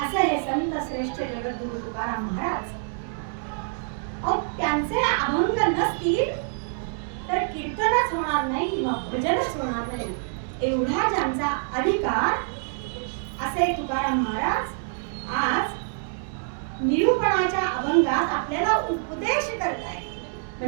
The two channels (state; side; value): silent; left; digital silence